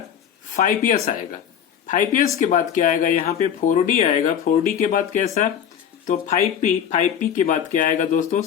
5s आएगा। 5s के बाद क्या आएगा, यहाँ पे 4d आएगा। 4d के बाद कैसा, तो 5p। 5p के बाद क्या आएगा दोस्तों,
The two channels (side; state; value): right; quieter; 8.7 dB